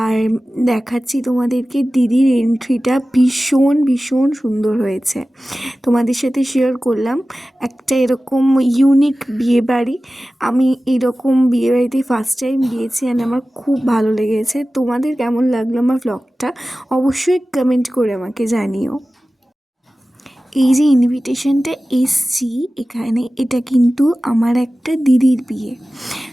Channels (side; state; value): both; normal; correlation 0.96